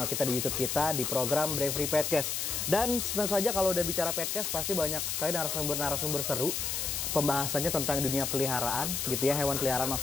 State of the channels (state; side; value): noise; left; hiss, 1 dB below the sound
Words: kita, di YouTube kita, di program Bravery Podcast. Dan tentu saja kalau udah bicara podcast pasti banyak sekali narasumber seru. Pembahasannya tentang dunia peliharaan gitu ya, hewan peliharaan